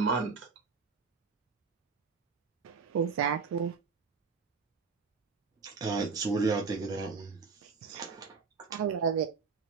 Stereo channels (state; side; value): quieter; left; 5.1 dB